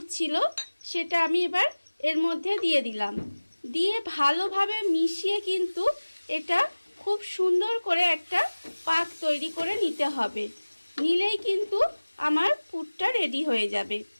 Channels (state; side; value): inverted; both; correlation -1.00